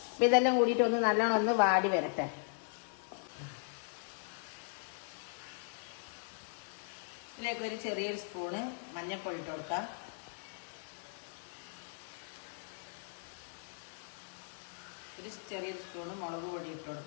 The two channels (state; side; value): silent; right; 53 dB below the other